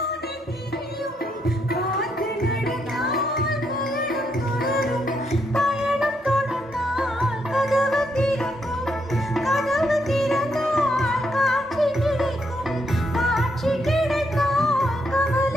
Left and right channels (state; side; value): normal; both; correlation 0.77